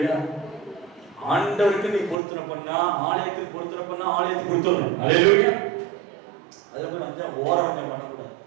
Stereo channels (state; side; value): drops out; left; at 2.1 s